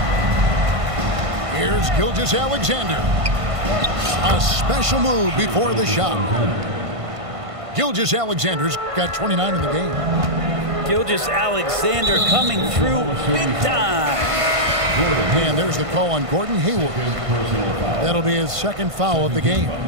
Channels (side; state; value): left; late; 1.5 ms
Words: Here's Gilgeous-Alexander. A special move before the shot. Gilgeous-Alexander's got 29 in the game. Gilgeous-Alexander coming through big time. And there's the call on Gordon Hayward. That'll be his second foul of the game.